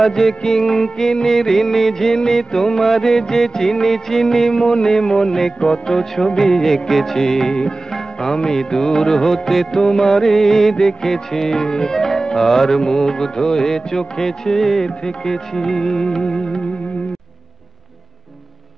কিঙ্কিনি রিনি ঝিনি তোমারে যে চিনি চিনি, মনে মনে কত ছবি এঁকেছি, আমি দূর হতে তোমারেই দেখেছি, আর মুগ্ধ হয়ে চোখে চেয়ে থেকেছি।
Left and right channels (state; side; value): quieter; left; 3.1 dB